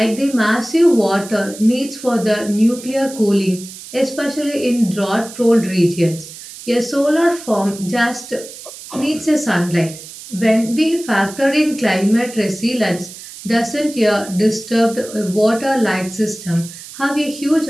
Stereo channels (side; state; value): right; noise; hiss, 15 dB below the sound